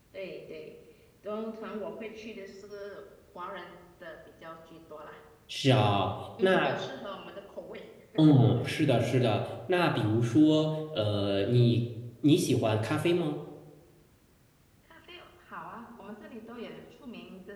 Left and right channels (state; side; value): identical; both; correlation 1.00